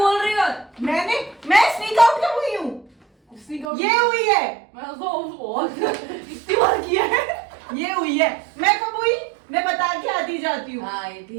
रही हो। मैं स्नीक आउट कब हुई हूँ? इसने कहा- ये हुई है, मैं तो बहुत इतनी बार किया है। ये हुई है। मैं कब हुई? मैं बता के आती जाती हूँ। हाँ, ये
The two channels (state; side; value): drops out; left; at 3.7 s